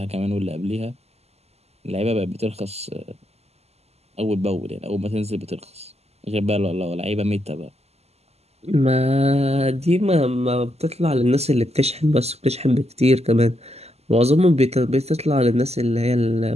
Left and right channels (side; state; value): left; late; 0.30 ms